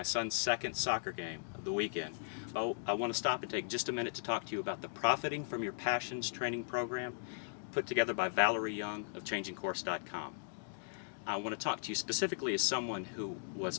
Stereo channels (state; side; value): silent; right; digital silence